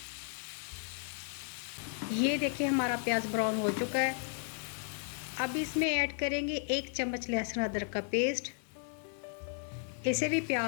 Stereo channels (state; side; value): silent; right; 55 dB below the other